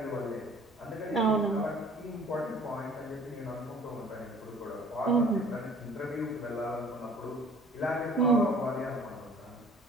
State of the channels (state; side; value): normal; both; correlation 0.51